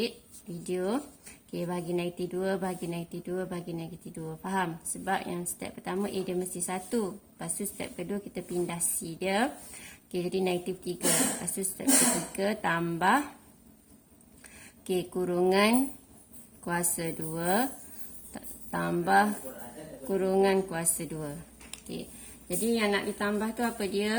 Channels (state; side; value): identical; both; correlation 1.00